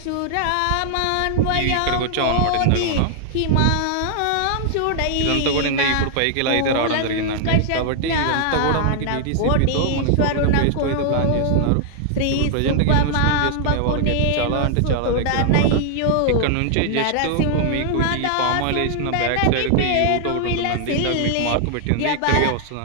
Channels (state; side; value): different; both; correlation -0.01